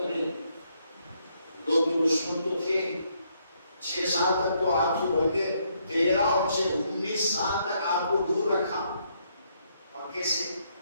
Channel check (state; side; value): inverted; both; correlation -0.73